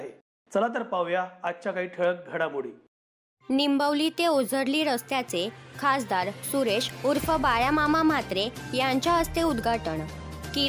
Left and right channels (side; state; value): both; identical; correlation 1.00